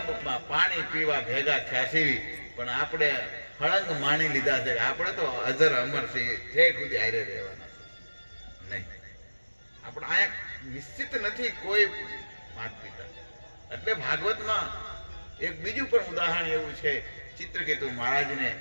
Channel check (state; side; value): inverted; both; correlation -1.00